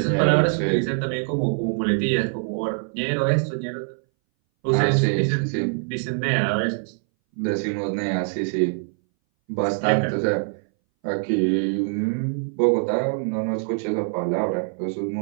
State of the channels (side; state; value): left; silent; 61 dB below the other